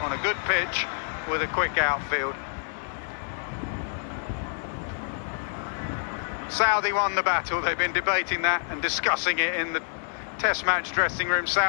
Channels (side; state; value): right; silent; digital silence